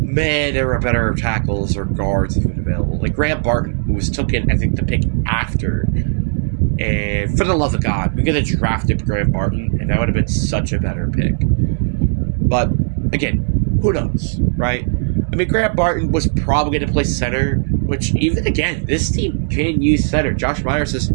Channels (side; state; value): left; silent; digital silence